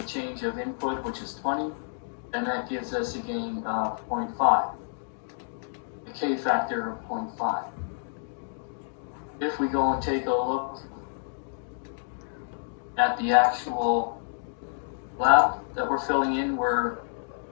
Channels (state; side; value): silent; right; digital silence